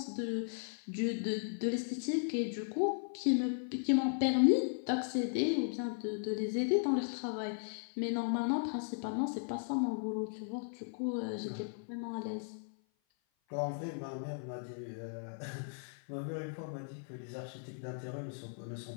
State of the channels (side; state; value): right; silent; 53 dB below the other